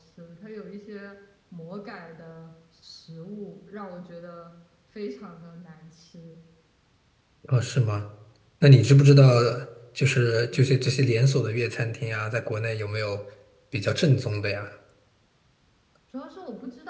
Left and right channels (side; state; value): both; identical; correlation 1.00